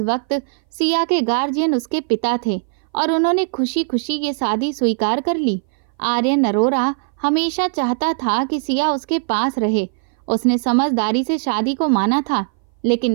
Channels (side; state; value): left; silent; 60 dB below the other